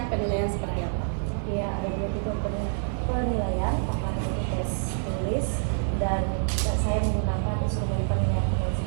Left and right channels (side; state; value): left; silent; 55 dB below the other